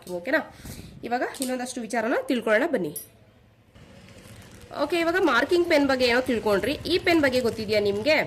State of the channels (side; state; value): both; identical; correlation 1.00